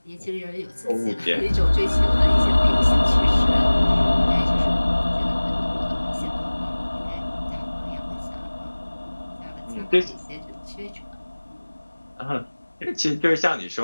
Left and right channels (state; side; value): inverted; both; correlation -1.00